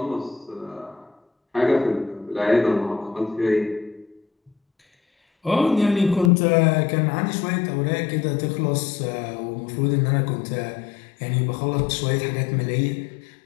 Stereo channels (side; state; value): right; drops out; at 6.3 s